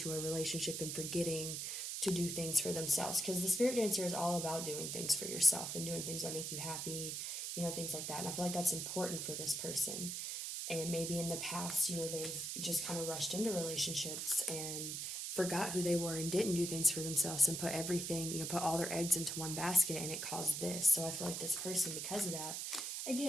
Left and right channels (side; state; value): right; noise; hiss, 4 dB below the sound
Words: a relationship and forgetting to do things for themselves. Because the Spirit Dancer is all about doing things for yourself and doing things that make you happy, you know, things like that. And I feel like that's important for this person. And maybe in the past, you know, they've just kind of rushed into relationships and forgot who they were and didn't do things for themselves and put everything, you know, put all their eggs into one basket, and it caused this. So I feel like this person, because of that,